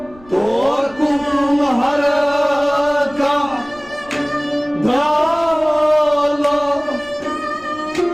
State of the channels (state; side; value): noise; left; rumble, 24 dB below the sound